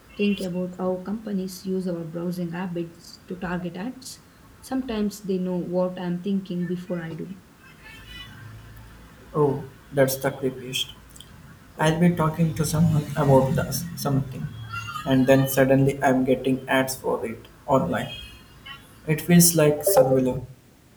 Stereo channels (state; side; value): identical; both; correlation 1.00